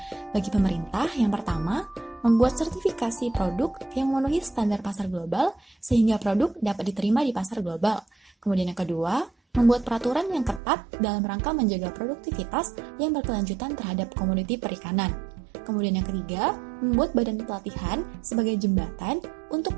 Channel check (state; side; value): drops out; left; at 10.6 s